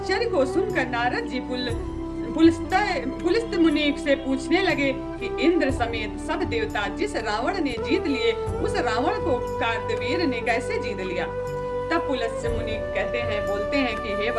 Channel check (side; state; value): both; identical; correlation 1.00